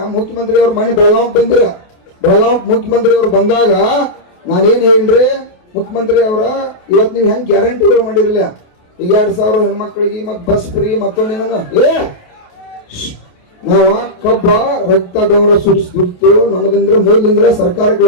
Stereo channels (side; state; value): right; late; 28 ms